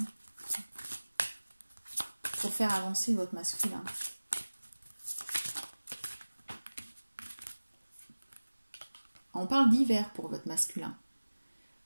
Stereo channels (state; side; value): inverted; both; correlation -1.00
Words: pour faire avancer votre masculin. On parle d'hiver pour votre masculin.